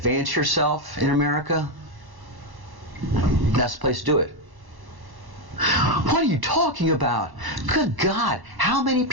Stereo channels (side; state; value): left; late; 1.1 ms